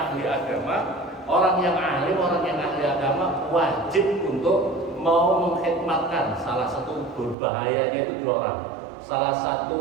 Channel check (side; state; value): left; drops out; at 7.4 s